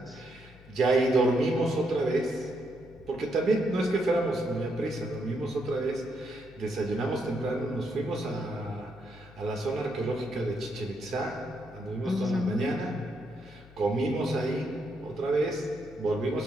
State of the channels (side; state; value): left; noise; hum, 22 dB below the sound